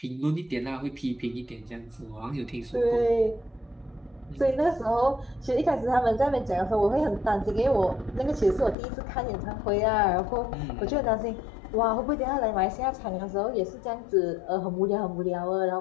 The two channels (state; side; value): drops out; right; at 8.8 s